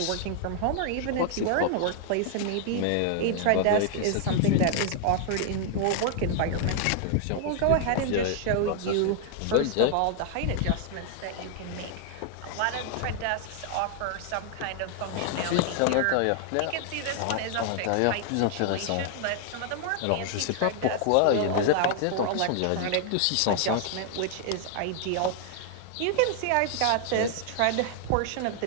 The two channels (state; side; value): different; both; correlation 0.00